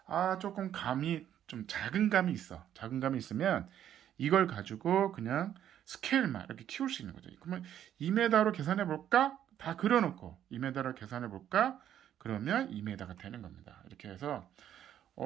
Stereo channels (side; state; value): left; quieter; 10.6 dB